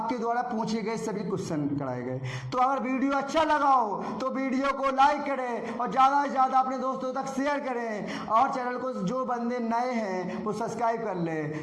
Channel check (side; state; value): both; identical; correlation 1.00